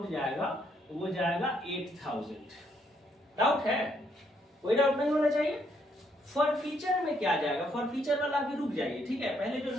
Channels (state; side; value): normal; both; correlation 0.72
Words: जाएगा वो जाएगा 8000। डाउट है, कोई डाउट नहीं होना चाहिए। फॉर फीचर में क्या जाएगा, फॉर फीचर वाला भी रुक जाइए, ठीक है, पहले जो